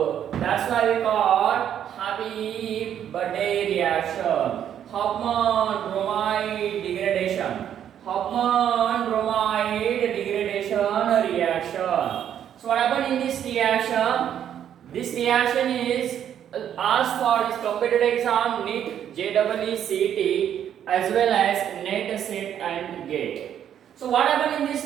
that's why we call happy birthday reaction. Huffman bromide degradation reaction. So what happened in this reaction? This reaction is asked for this competitive exam, NEET, JEE, CET, as well as NET, SET and GATE. So what happened in this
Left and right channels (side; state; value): left; quieter; 9.7 dB